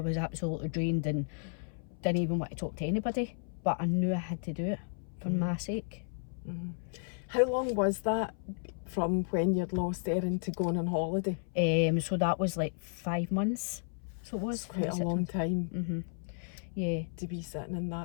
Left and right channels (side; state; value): right; silent; 56 dB below the other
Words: was absolutely drained and didn't even want to talk to anybody, but I knew I had to do it for my sake. How long was that from when you'd lost Erin to going on holiday? So that was like 5 months. So it was quite a long time. Yeah. To be sitting in